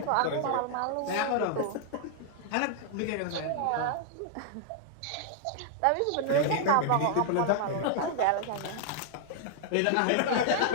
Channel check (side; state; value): both; different; correlation 0.00